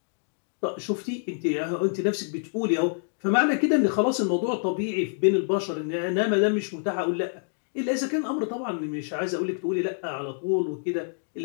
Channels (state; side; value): silent; right; digital silence